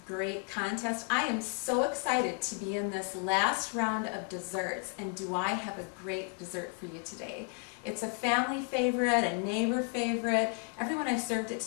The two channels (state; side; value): quieter; right; 37.1 dB